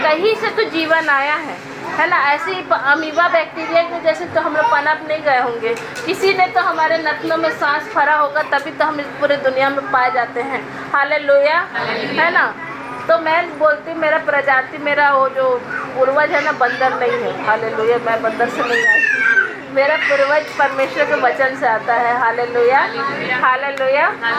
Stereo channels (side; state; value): both; identical; correlation 1.00